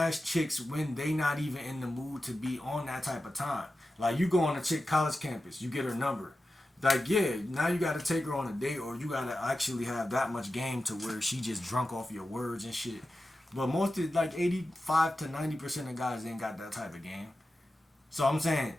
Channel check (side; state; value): both; normal; correlation 0.93